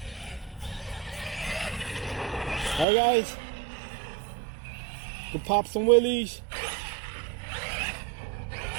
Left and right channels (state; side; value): drops out; left; at 2.9 s